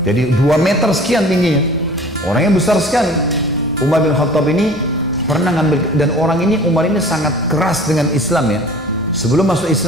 Jadi 2 meter sekian tingginya. Orangnya besar sekali. Umar bin Khattab ini pernah ngambil, dan orang ini, Umar ini sangat keras dengan Islam ya. Sebelum masuk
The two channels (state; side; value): normal; both; correlation 0.45